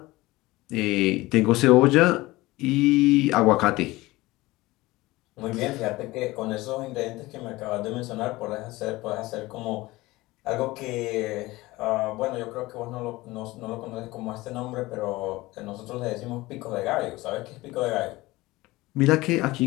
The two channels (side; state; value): right; quieter; 19.8 dB